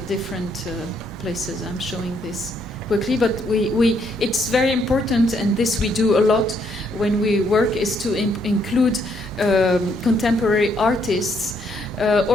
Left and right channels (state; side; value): normal; both; correlation 0.72